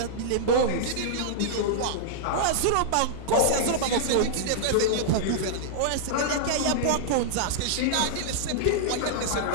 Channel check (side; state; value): both; different; correlation -0.02